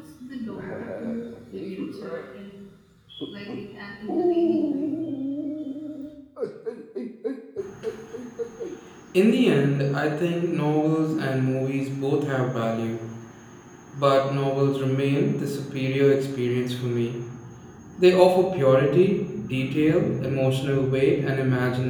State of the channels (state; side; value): identical; both; correlation 1.00